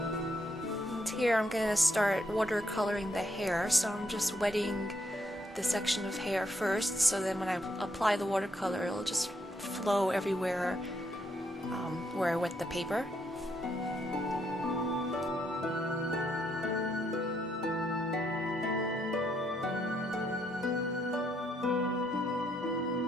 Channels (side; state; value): both; normal; correlation 0.75